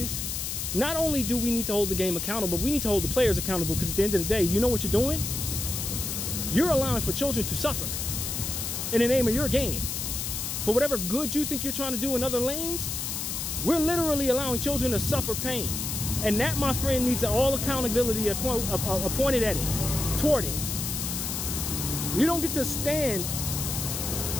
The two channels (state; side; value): noise; left; hiss, 3 dB below the sound